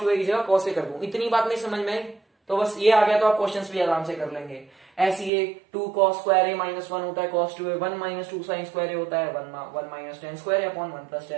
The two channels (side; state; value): left; drops out; at 5.3 s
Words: टू ए की जगह कॉस ए कर दूं, इतनी बात नहीं समझ में आई तो बस ये आ गया तो आप क्वेश्चंस भी आराम से कर लेंगे। ऐसे ये two cos square A minus one होता है cos two A, one minus two sign square A होता है, one minus tan square A upon one plus